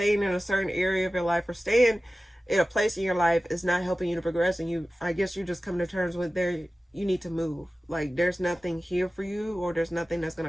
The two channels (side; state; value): both; normal; correlation 0.96